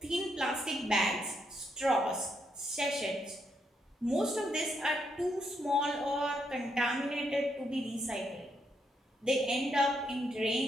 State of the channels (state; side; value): normal; both; correlation 0.78